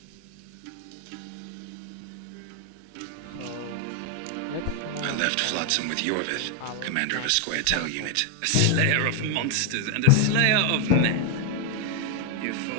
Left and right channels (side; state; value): both; different; correlation 0.00